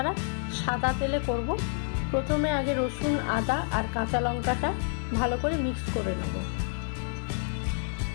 সাদা তেলে করব। প্রথমে আগে রসুন, আদা আর কাঁচা লঙ্কাটা ভালো করে মিক্স করে নেব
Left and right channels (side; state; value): right; silent; digital silence